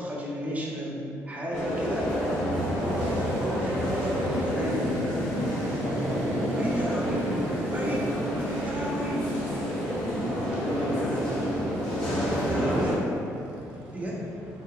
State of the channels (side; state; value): both; normal; correlation 0.71